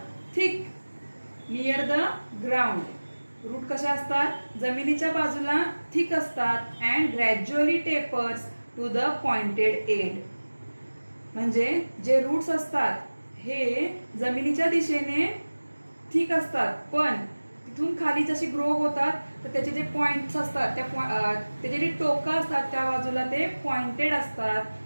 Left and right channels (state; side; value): inverted; both; correlation -1.00